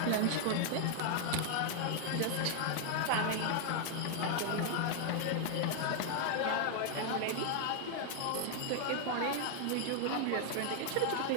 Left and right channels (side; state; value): both; different; correlation 0.00